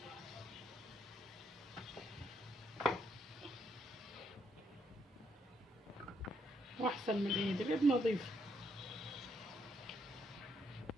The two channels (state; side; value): normal; both; correlation 0.75